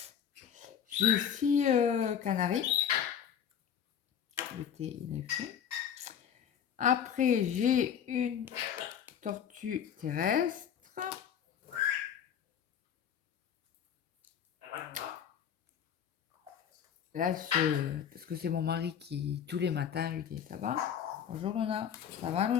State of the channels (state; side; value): quieter; right; 8.6 dB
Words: J'ai 6 canaris. L'été, il est fait. Après, j'ai une tortue terrestre. Là, parce que c'est mon mari qui, tous les matins, lui dit, ça va? Bonjour Luna, ça va